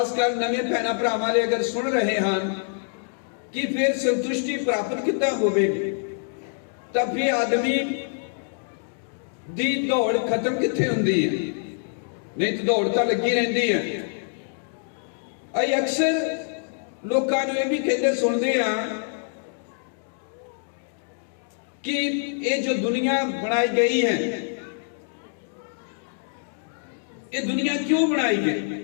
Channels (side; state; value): right; silent; digital silence